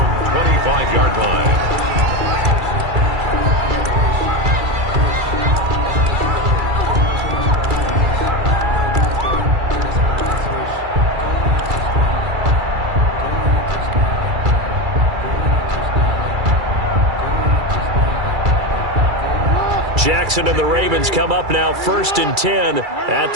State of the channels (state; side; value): late; left; 2.3 ms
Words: line. Jackson and the Ravens come up now 1st and 10 at